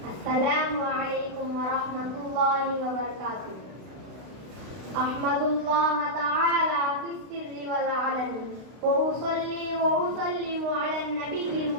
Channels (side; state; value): left; late; 32 ms